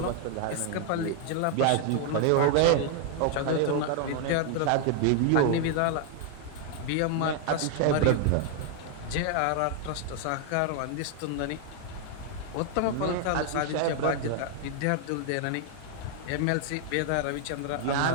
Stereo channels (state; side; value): different; both; correlation 0.00